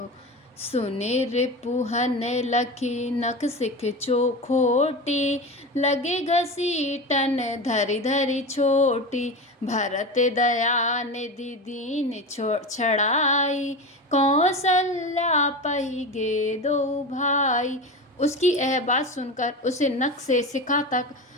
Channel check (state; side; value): normal; both; correlation 0.25